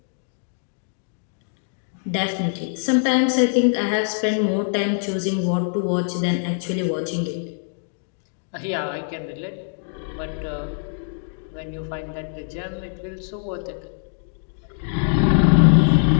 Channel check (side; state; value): right; silent; digital silence